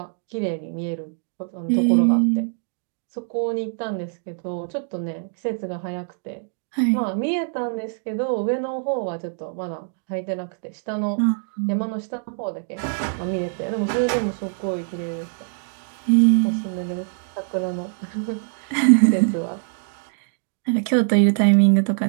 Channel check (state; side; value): silent; left; digital silence